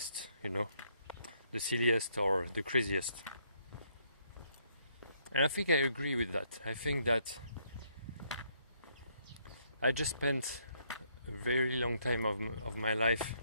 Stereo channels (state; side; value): inverted; both; correlation -0.71